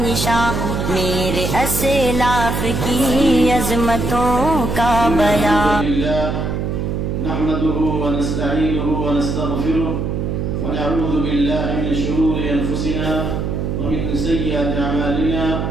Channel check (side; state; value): right; noise; hum, 1 dB below the sound